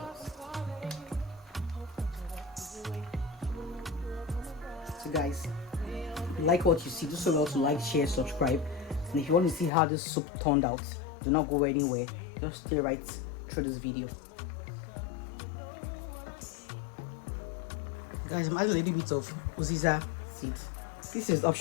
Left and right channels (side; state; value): right; drops out; at 9.7 s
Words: So guys, if you like what you see, do so well to like, share, subscribe, and if you want to see how this soup turned out, do not go anywhere, just stay right through this video. Guys, I'm adding a little bit of uziza seed. This is